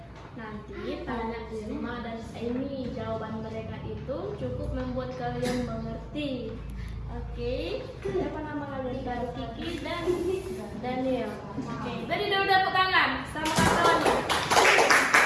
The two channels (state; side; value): identical; both; correlation 1.00